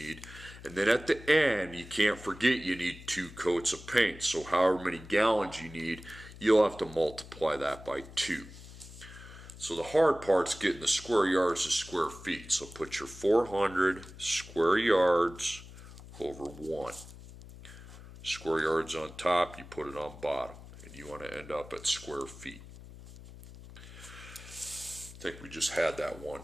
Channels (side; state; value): left; noise; hum, 16 dB below the sound